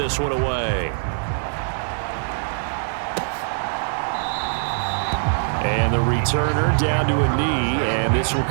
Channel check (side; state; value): left; silent; digital silence